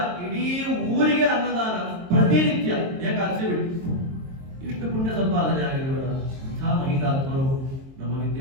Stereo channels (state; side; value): late; left; 23 ms